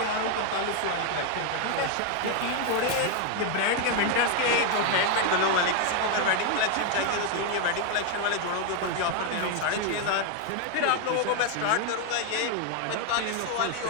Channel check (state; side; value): different; both; correlation 0.01